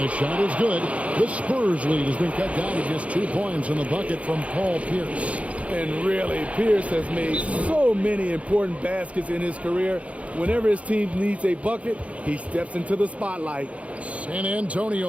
shot is good. The Spurs lead has been cut down to just 2 points in the bucket from Paul Pierce. And really, Pierce has made so many important baskets in his career. Whenever his team needs a bucket, he steps into the spotlight. San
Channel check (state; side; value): late; left; 0.064 ms